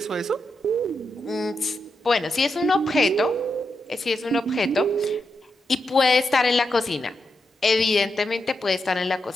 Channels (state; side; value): normal; both; correlation 0.85